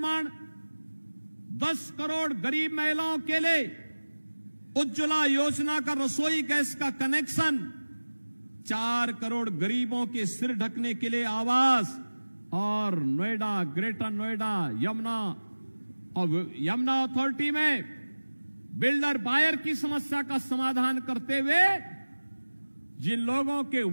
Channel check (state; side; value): inverted; both; correlation -1.00